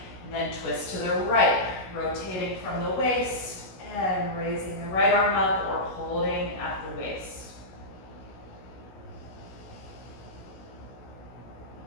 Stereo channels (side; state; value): right; late; 16 ms